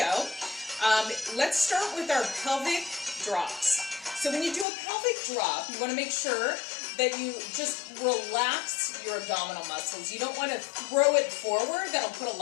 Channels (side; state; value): right; drops out; at 4.7 s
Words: Let's start with our pelvic drops. So when you do a pelvic drop, you want to make sure that you just relax your abdominal muscles. You don't want to throw it forward. That'll put a